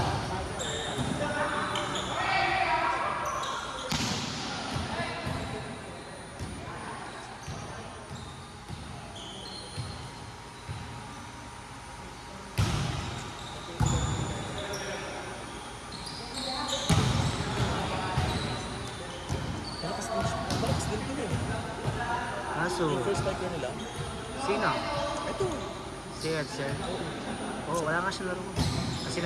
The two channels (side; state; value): both; identical; correlation 1.00